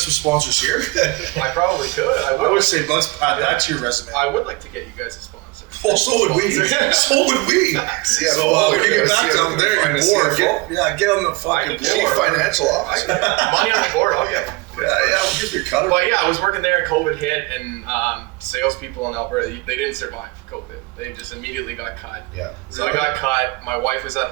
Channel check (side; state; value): left; quieter; 23.6 dB